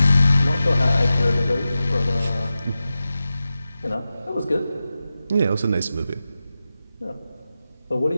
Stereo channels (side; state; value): both; inverted; correlation -0.93